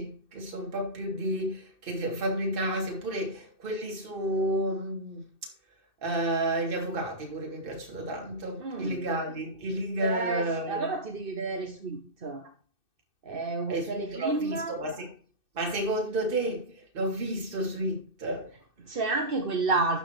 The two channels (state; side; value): late; left; 2.6 ms